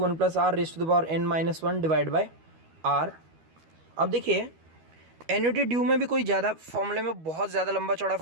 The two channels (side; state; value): left; late; 12 ms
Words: plus r raise to the power n minus 1 divide by r. अब देखिए एन्युटी ड्यू में भी कोई ज़्यादा फॉर्मूले में बहुत ज़्यादा लंबा चौड़ा